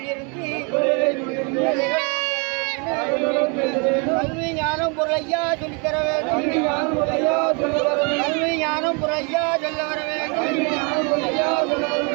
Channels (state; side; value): quieter; left; 34.3 dB